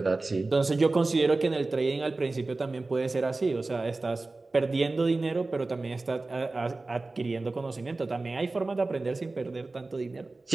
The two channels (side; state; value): left; quieter; 3.3 dB